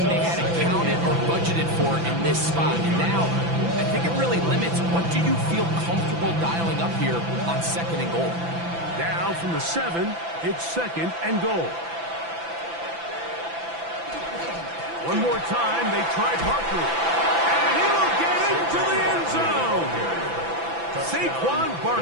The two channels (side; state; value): left; late; 6.0 ms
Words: they had accounted or budgeted for in this spot. And now, I think it really limits what do you feel comfortable dialing up here on 2nd and goal. Now from the 7, it's 2nd and goal. One more time, they try Barkley. And he will get into the end zone. Saquon